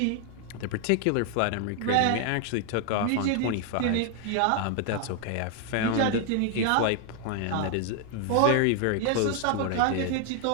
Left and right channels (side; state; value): both; different; correlation 0.00